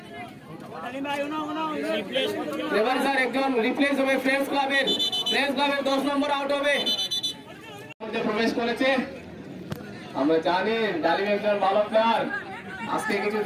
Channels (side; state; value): both; identical; correlation 1.00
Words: এবার স্যার একজন রিপ্লেস হবে ফ্রেন্ডস ক্লাবের 10 নম্বর আউট হবে প্রবেশ করেছে আমরা জানি ডালিম একজন ভালো প্লেয়ার আজকে কিছু